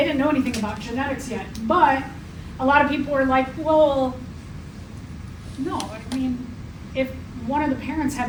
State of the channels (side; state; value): both; identical; correlation 1.00